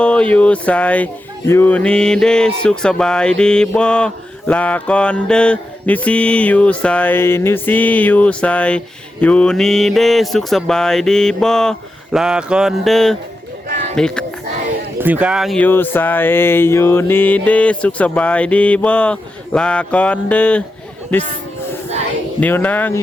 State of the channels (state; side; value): normal; both; correlation 0.89